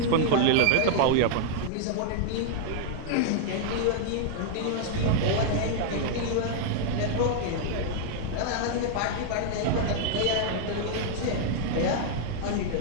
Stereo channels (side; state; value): both; different; correlation -0.01